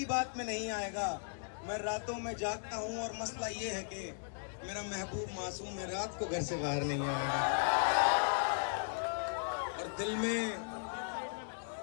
बात में नहीं आएगा। मैं रातों में जागता हूँ और मसला ये है कि मेरा महबूब मासूम है, रात को घर से बाहर नहीं आएगा। और दिल में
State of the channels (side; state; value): right; silent; digital silence